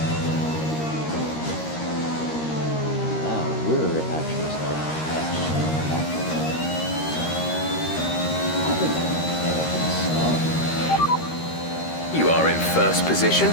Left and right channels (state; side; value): late; right; 13 ms